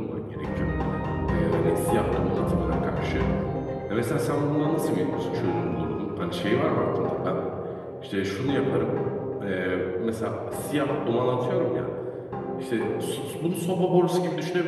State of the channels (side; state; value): both; identical; correlation 1.00